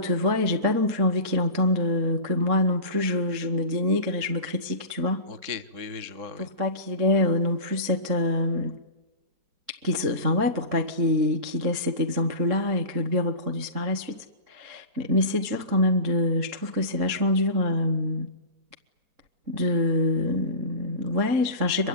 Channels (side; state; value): left; late; 3.8 ms